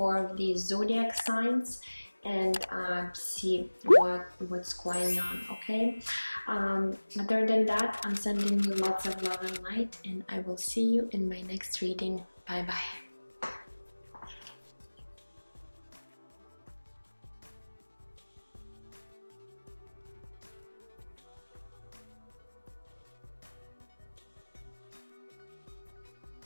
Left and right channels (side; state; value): both; inverted; correlation -1.00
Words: of these zodiac signs and see what's going on. Okay, other than that, I'm sending you lots of love and light, and I will see you in my next reading. Bye bye.